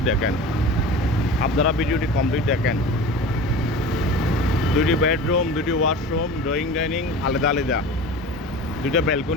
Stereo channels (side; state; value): both; normal; correlation 0.35